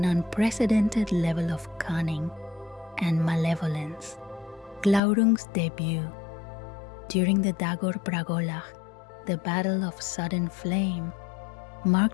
unprecedented level of cunning and malevolence. Glaurung's debut. During the Dagor Bragolach, the Battle of Sudden Flame,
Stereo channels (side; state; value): right; drops out; at 5.0 s